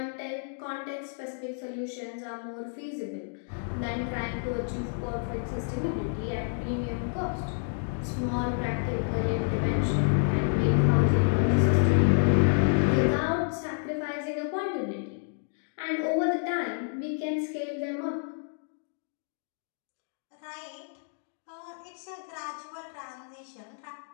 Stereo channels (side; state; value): right; silent; digital silence